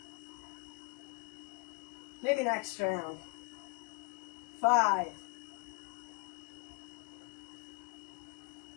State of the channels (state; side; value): quieter; right; 29.4 dB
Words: Maybe next round. 5.